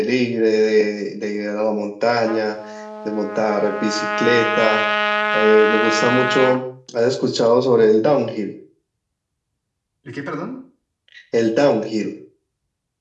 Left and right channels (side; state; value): both; identical; correlation 1.00